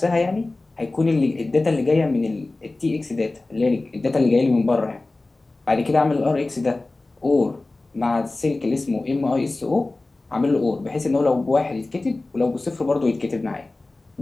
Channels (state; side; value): quieter; right; 3.1 dB